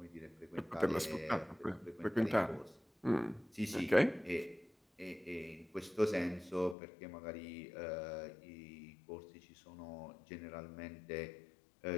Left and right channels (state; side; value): drops out; right; at 6.8 s